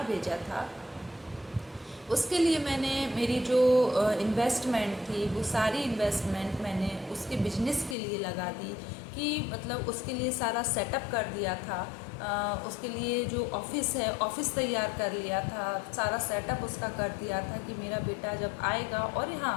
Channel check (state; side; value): drops out; right; at 8.0 s